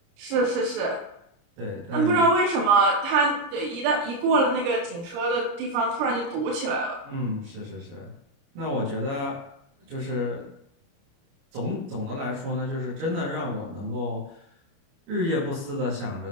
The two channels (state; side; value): late; left; 30 ms